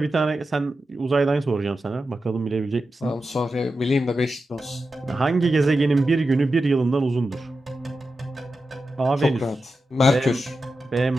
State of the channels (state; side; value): normal; both; correlation 0.91